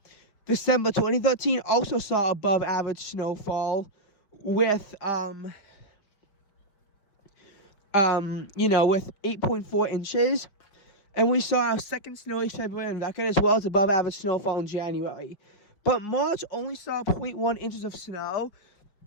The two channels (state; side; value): late; right; 5.4 ms